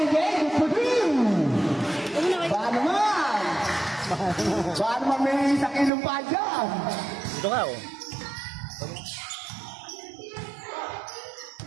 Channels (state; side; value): drops out; left; at 5.9 s